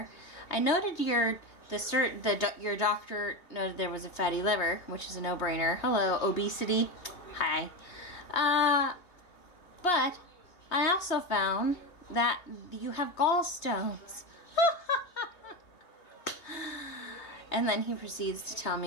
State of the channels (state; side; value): late; right; 2.9 ms